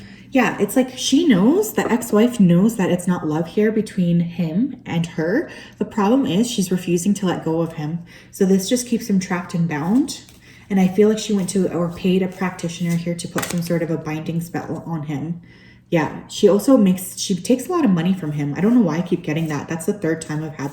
Yeah, it's like she knows, the ex-wife knows that it's not love here between him and her. The problem is she's refusing to let go of him. So this just keeps him trapped and bound. And I feel like she went to or paid a practitioner here to put some sort of a binding spell on him. Yeah, she takes a lot of money from him. I don't know why I keep getting that. That's the third time I've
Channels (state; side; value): identical; both; correlation 1.00